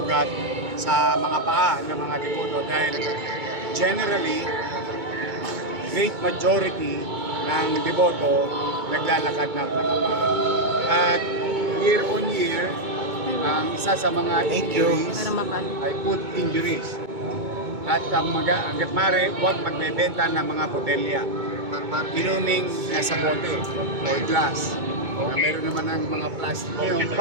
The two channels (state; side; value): late; left; 2.2 ms